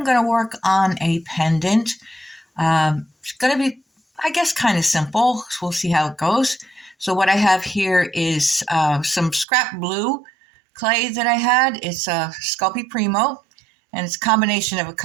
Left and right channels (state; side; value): drops out; left; at 9.5 s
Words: going to work on a pendant. It's going to be, I guess, kind of simple. So we'll see how it goes. So what I have here is some scrap blue clay that I had. It's a Sculpey Primo, and it's a combination of a